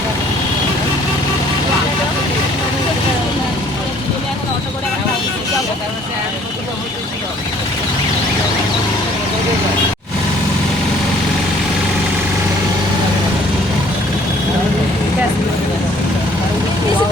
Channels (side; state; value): both; normal; correlation 0.58